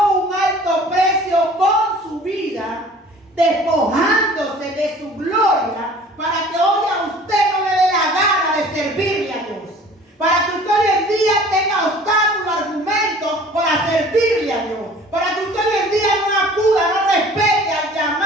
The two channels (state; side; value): normal; both; correlation 0.48